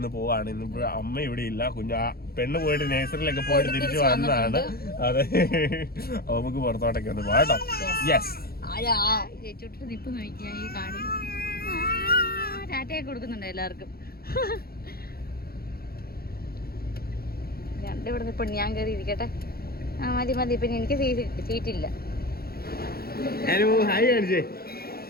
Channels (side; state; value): right; late; 0.44 ms